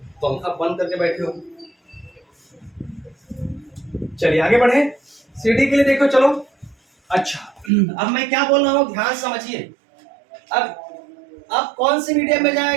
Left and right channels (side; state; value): left; drops out; at 7.7 s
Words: पंखा बंद करके बैठे हो। चलिए आगे बढ़े। CD के लिए देखो, चलो। अच्छा, अब मैं क्या बोल रहा हूँ ध्यान समझिए। अब कौन से मीडियम में